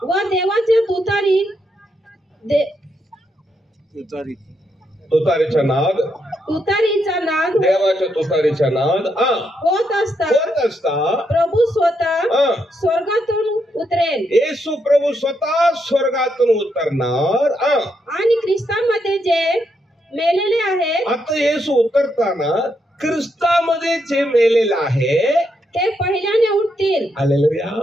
व देवाच्या तुतारीचा नाद, देवाच्या तुतारीचा नाद होत असता प्रभू स्वतः स्वर्गातून उतरेल. येशू प्रभू स्वतः स्वर्गातून उतरणार आणि ख्रिस्तामध्ये जे मेलेले आहेत. आता येशू उतरताना ख्रिस्तामध्ये जे मेलेले आहे ते पहिल्याने उठतील. हालेलुया.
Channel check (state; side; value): normal; both; correlation 0.79